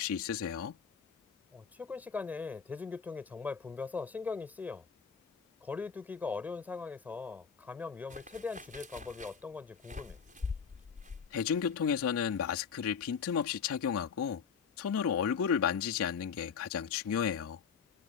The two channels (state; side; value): quieter; right; 6.7 dB